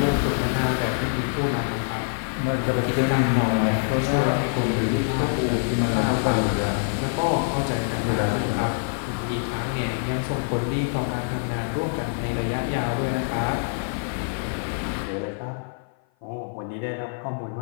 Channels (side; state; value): right; silent; 55 dB below the other